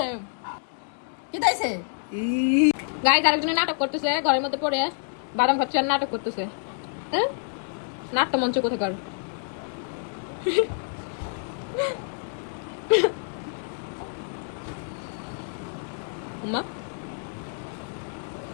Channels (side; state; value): right; silent; 60 dB below the other